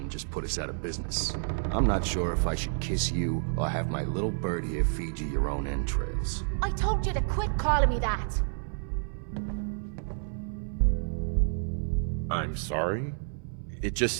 just put us out of business. I'm not sure if I should kiss you or have my little bird here feed you your own entrails. I told you to quit calling me that. I'm sorry. It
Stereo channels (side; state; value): left; silent; 58 dB below the other